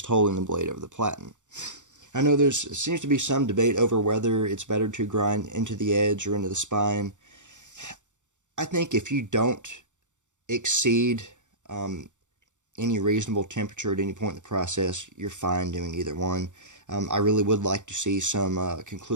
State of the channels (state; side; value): late; left; 0.85 ms